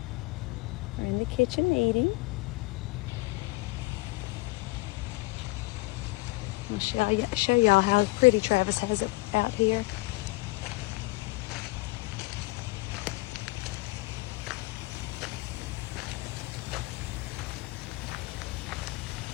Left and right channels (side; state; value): right; quieter; 22.9 dB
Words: are in the kitchen eating. Let me show y'all how pretty Travis has it out here.